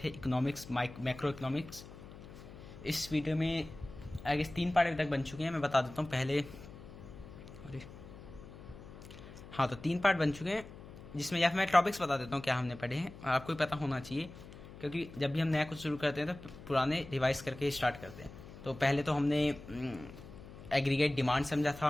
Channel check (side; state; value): left; noise; hum, 16 dB below the sound